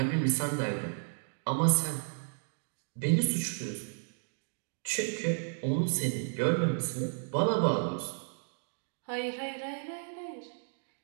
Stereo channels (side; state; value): left; silent; digital silence